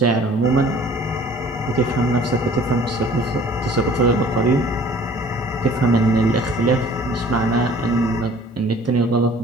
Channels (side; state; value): both; normal; correlation 0.51